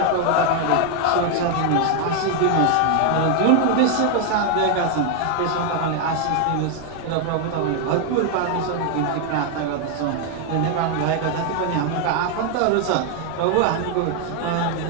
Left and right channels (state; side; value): different; both; correlation 0.01